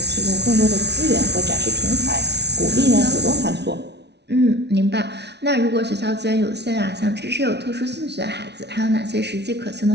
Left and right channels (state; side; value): late; left; 0.50 ms